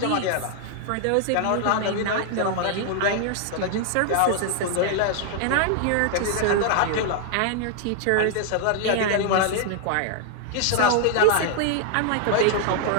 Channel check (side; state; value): both; different; correlation 0.00